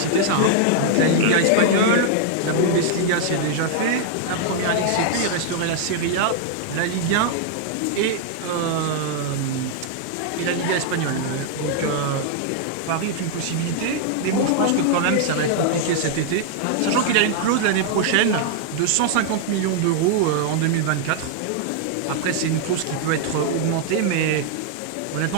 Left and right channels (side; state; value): both; different; correlation 0.00